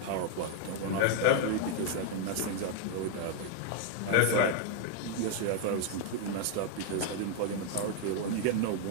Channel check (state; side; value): different; both; correlation 0.01